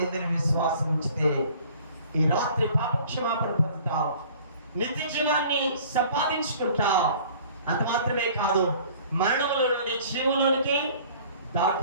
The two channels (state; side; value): inverted; both; correlation -0.51